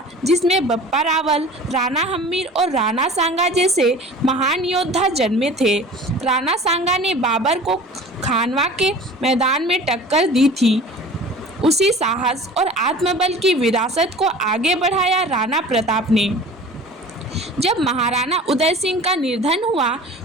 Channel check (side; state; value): both; normal; correlation 0.42